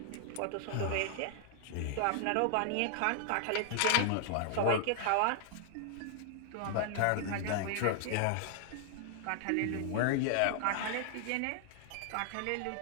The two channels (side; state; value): both; different; correlation 0.00